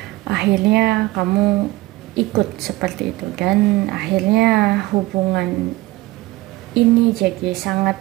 Akhirnya kamu ikut seperti itu dan akhirnya hubungan ini jadi sangat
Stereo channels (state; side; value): quieter; left; 19.4 dB